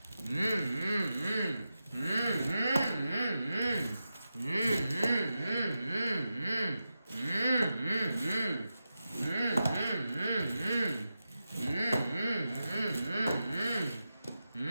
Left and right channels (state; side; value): inverted; both; correlation -0.91